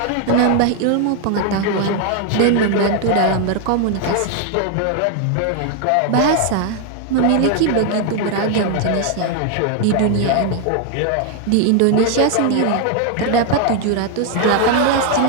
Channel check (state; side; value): different; both; correlation 0.00